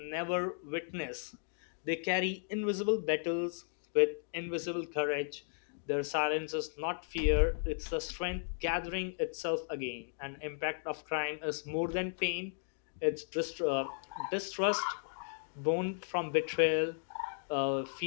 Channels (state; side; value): silent; right; digital silence